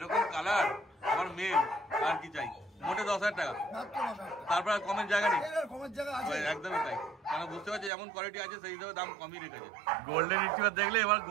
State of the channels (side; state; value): left; drops out; at 7.9 s